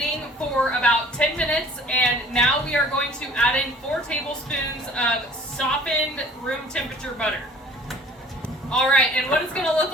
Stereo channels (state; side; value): normal; both; correlation 0.50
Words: for about 10 minutes, and now we are going to add in 4 tablespoons of softened room temperature butter. All right, and what it's gonna look